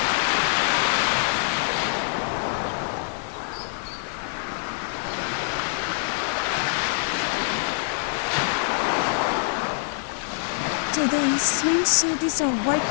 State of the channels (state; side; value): silent; right; digital silence